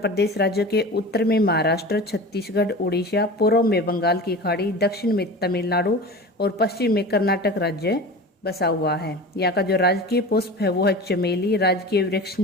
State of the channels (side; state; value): both; normal; correlation 0.34